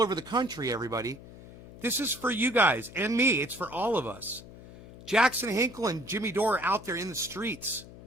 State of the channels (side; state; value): left; noise; hum, 18 dB below the sound